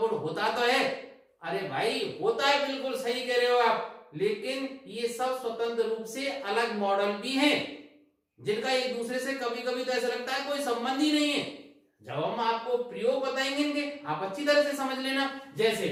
होता तो है। अरे भाई होता है, बिल्कुल सही कह रहे हो आप, लेकिन ये सब स्वतंत्र रूप से अलग मॉडल भी हैं जिनका एक दूसरे से कभी कभी तो ऐसा लगता है कोई संबंध ही नहीं है। जब हम आपको प्रयोग बताएंगे इनके, आप अच्छी तरह से समझ लेना। जैसे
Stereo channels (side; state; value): both; identical; correlation 1.00